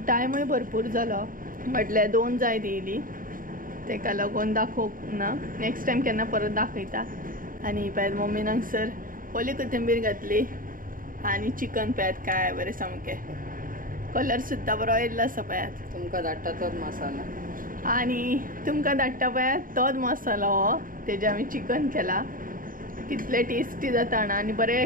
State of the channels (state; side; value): late; left; 0.40 ms